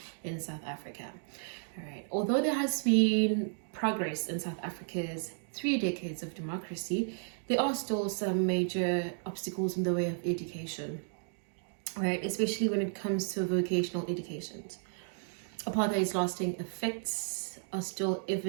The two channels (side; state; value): left; silent; digital silence